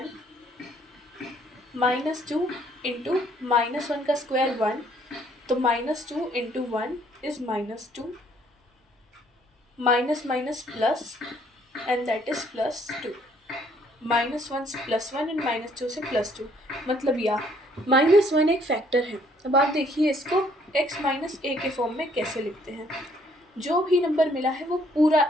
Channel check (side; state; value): both; normal; correlation 0.64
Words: -2 इंटू -1 का स्क्वायर 1, तो -2 into 1 is -2, minus minus plus and that is +2, -1 से +1 एंड -2 से +2, मतलब या -1 एक फैक्टर है। अब आप देखिए इसको x माइनस ए के फॉर्म में कैसे लिखते हैं। जो भी नंबर मिला है वो